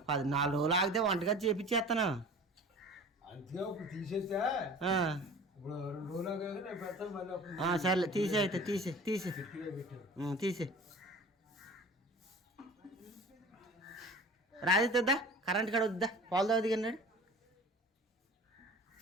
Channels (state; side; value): normal; both; correlation 0.41